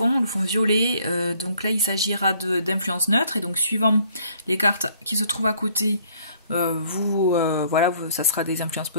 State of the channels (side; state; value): both; inverted; correlation -0.62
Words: le fond violet, donc là il s'agira d'influences neutres, et donc suivant les cartes qui se trouvent à côté, voilà, ça sera des influences